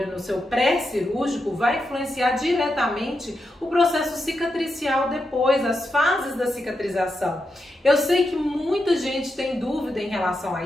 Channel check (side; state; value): both; normal; correlation 0.86